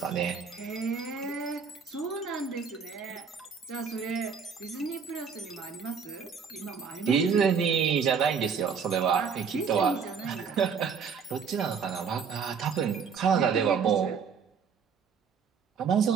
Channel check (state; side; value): quieter; left; 6.3 dB